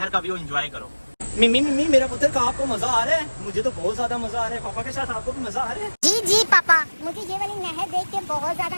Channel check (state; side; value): inverted; both; correlation -1.00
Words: का व्यू एंजॉय करो। मिमी मिमी, मेरा पुत्र का आपको मजा आ रहा है? मुझे तो बहुत ज्यादा मजा आ रहा है। पापा के साथ आपको भी मजा आ रहा है? जी जी पापा, मुझे ये वाली नहर देख के बहुत ज्यादा